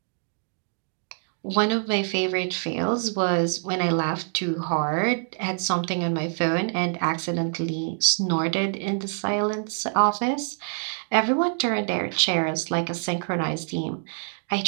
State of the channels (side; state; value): left; silent; digital silence